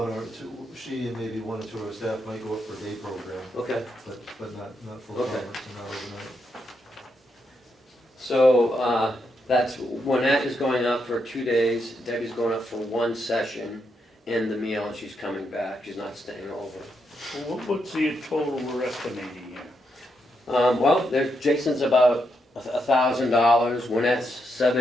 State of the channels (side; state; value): both; normal; correlation 0.81